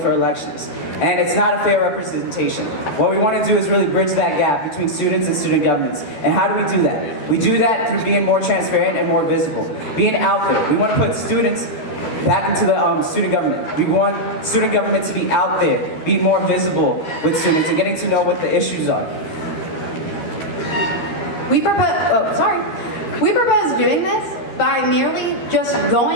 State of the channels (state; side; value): late; right; 12 ms